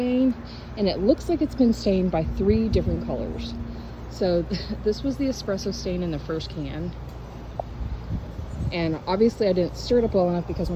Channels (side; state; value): both; identical; correlation 1.00